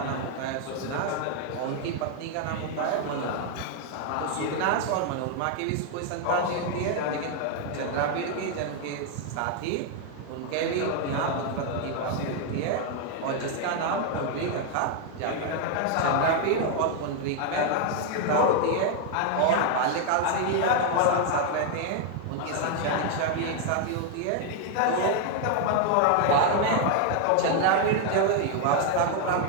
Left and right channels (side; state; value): both; different; correlation 0.00